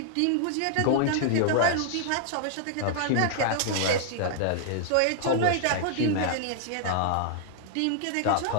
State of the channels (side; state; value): both; different; correlation -0.01